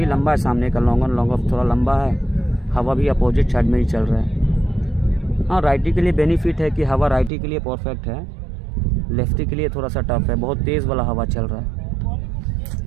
लंबा है सामने का, लॉन्ग ऑन लॉन्ग ऑफ थोड़ा लंबा है। हवा भी अपोजिट साइड में ही चल रहा है। हाँ, राइटी के लिए बेनिफिट है कि हवा राइटी के लिए परफेक्ट है, लेफ्टी के लिए थोड़ा सा टफ है। बहुत तेज़ वाला हवा चल रहा है।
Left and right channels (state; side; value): drops out; left; at 7.3 s